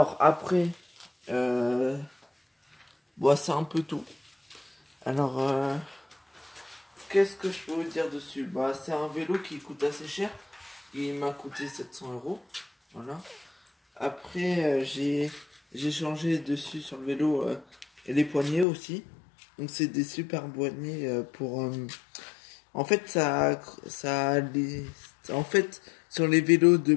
après bon, c'est un peu tout. Alors qu'est-ce que je peux vous dire dessus? Bah, c'est un vélo qui coûte assez cher. Il m'a coûté 700 euros. Voilà. Après, j'ai changé dessus sur le vélo les poignées aussi. Donc, c'est des super poignées pour. En fait, en fait, sur les vélos de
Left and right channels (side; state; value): right; drops out; at 18.7 s